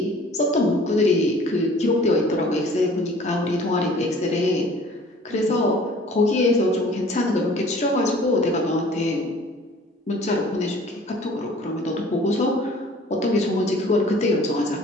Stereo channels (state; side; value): normal; both; correlation 0.50